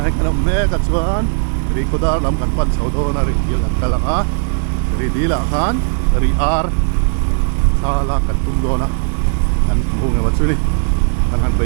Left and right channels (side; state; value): left; silent; digital silence